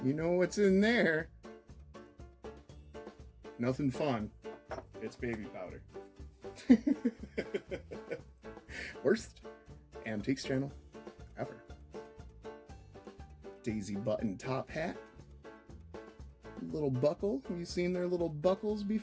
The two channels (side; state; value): both; identical; correlation 1.00